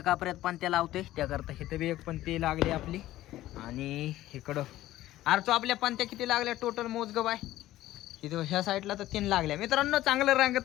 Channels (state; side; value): quieter; right; 15.0 dB